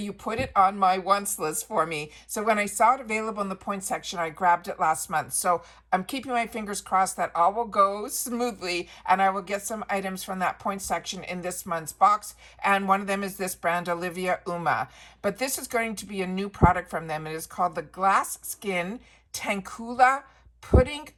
put it on my wants list for me. So when I saw it available in the points section, I grabbed it last month. So I'm keeping my fingers crossed that all will go smoothly, and I will get some items from that points section in this month's box. And one of them is this brand, Olivia Uma. But this is going to be a new product from them. It is called the Glass Skin Tankula Pudding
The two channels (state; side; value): identical; both; correlation 1.00